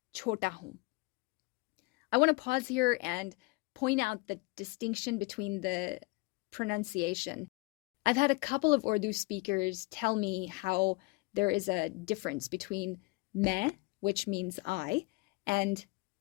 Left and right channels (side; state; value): right; quieter; 25.8 dB